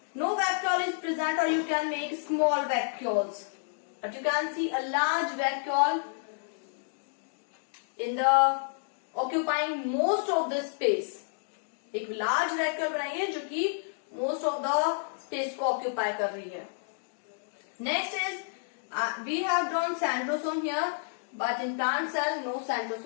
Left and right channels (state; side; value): silent; right; digital silence